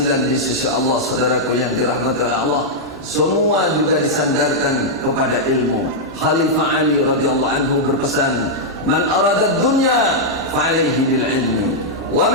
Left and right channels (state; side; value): normal; both; correlation -0.05